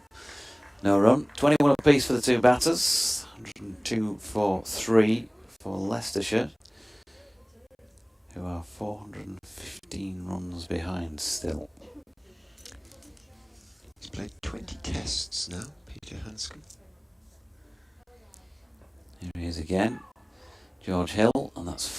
No run. 21 apiece for the two batters. 102 for 3 for Leicestershire, who are 415 runs behind still. He's played 20 tests now, Peter Hanscom. Here he is again. George Hill, and that's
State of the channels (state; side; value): identical; both; correlation 1.00